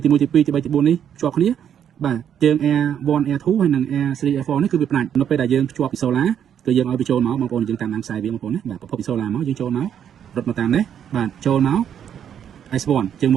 ទី3ទី4នេះភ្ជាប់គ្នាបាទជើង Air1 Air2 ហើយនិង Air3 Air4 នេះគឺវាផ្ដាច់នៅពេលដែលយើងភ្ជាប់ពីសូឡាគឺយើងឲ្យវាចូលមកបងប្អូនយើងតាមដានខ្សែវាបងប្អូនណាបាទប្រភពពីសូឡាមកយើងចូលមករត់មកតាមនេះបាទចូលមក S1 ជើង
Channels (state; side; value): quieter; left; 9.0 dB